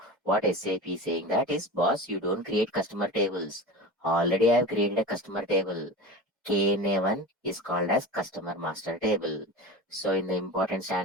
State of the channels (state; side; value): normal; both; correlation 0.30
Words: what SAP is saying that is, boss, you don't create customer tables. Already I have created a customer table. KNA1 is called as customer master table. So in the important